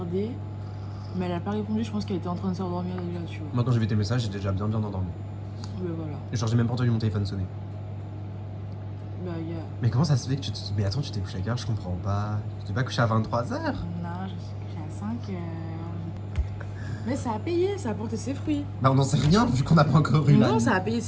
mais elle a pas répondu. Je pense qu'elle était en train de s'endormir déjà, tu vois. Moi, quand j'ai vu tes messages, j'étais déjà bien endormi. Mais voilà. Genre, j'ai même pas entendu mon téléphone sonner. Bah, il y a... Mais comment ça se fait que tu te... Mais attends, tu t'es couché à quelle heure? Je comprends pas. Tu t'es pas couché à 23h? Non, je suis couchée à 5h. Mais ça a payé, ça a porté ses fruits. Bah, on n'en sait rien vu qu'on n'a pas encore eu la. Non, ça a payé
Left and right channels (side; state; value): both; identical; correlation 1.00